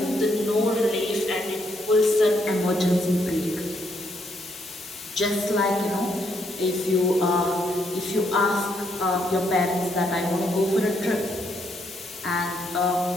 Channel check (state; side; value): normal; both; correlation 0.74